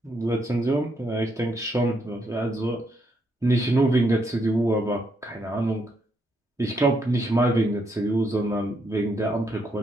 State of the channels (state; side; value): normal; both; correlation 0.76